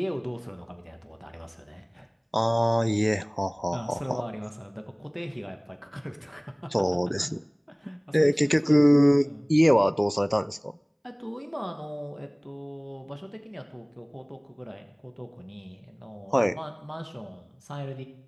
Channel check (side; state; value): both; identical; correlation 1.00